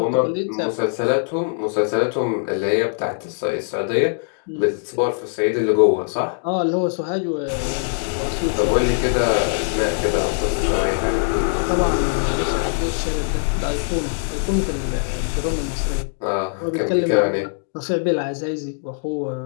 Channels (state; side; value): silent; right; digital silence